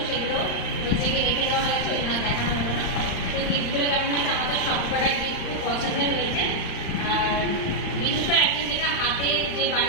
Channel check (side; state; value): right; late; 35 ms